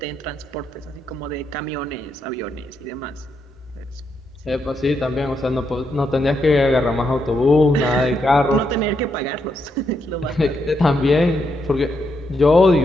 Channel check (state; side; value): normal; both; correlation 0.80